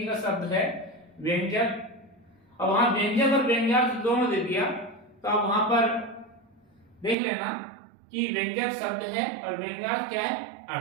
का शब्द है व्यंजक। अब वहां व्यंजक और व्यंग्यार्थ दोनों दे दिया, तो अब वहां पर देख लेना कि व्यंजक शब्द है और व्यंग्यार्थ क्या है?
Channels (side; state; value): left; drops out; at 7.2 s